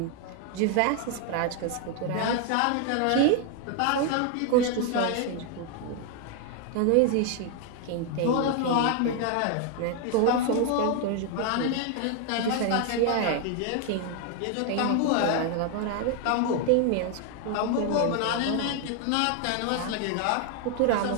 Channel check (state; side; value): different; both; correlation 0.00